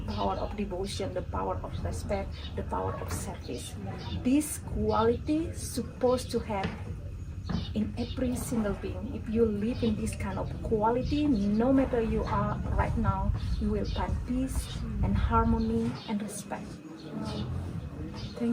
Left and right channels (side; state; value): both; identical; correlation 1.00